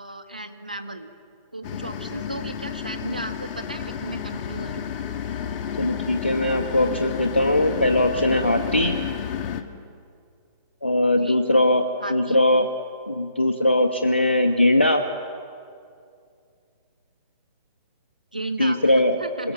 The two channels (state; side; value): inverted; both; correlation -0.74